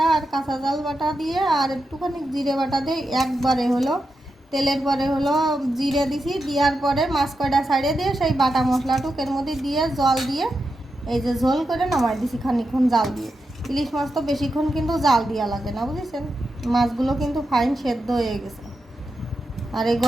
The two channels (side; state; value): both; normal; correlation 0.88